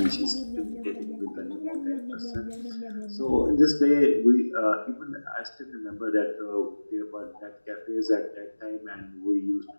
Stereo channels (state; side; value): inverted; both; correlation -1.00